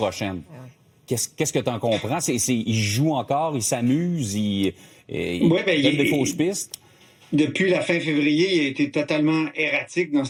Qu'est-ce que tu en comprends? Il joue encore, il s'amuse, il donne des fausses pistes? Depuis la fin février, il a été totalement erratique dans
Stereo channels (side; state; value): both; identical; correlation 1.00